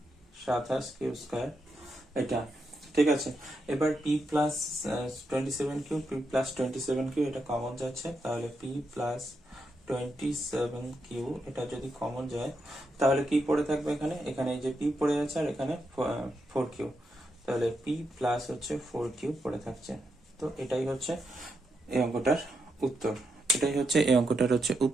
27 কিউ স্কয়ার এটা। ঠিক আছে, এবার p plus 27 q, p plus 27 q এটা কমন যাচ্ছে, তাহলে p প্লাস 27 কিউ এটা যদি কমন যায় তাহলে কি পড়ে থাকবে এখানে, এখানে এই যে p পড়ে যাচ্ছে আর এখানে 4 কিউ, তাহলে p প্লাস হচ্ছে 4 কিউ পড়ে থাকছে। তো এটাই হচ্ছে এই অঙ্কটার উত্তর, এটাই হচ্ছে এই অঙ্কটার হচ্ছে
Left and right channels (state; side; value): normal; both; correlation 0.83